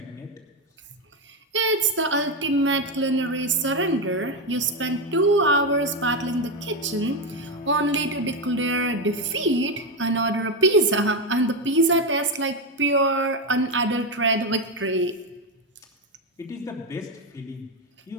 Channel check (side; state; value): both; normal; correlation 0.09